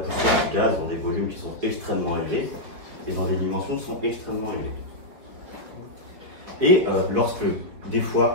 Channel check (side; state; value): left; late; 5.2 ms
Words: du gaz dans des volumes qui sont extrêmement élevés et dans des dimensions qui sont extrêmement élevées. Et lorsque, des